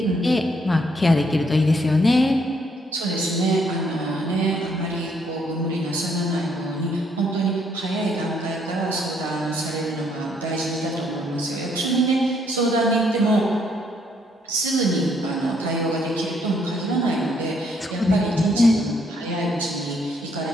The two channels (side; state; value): both; normal; correlation 0.70